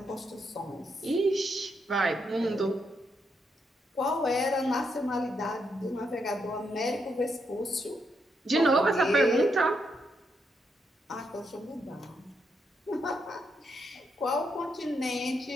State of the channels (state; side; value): normal; both; correlation 0.80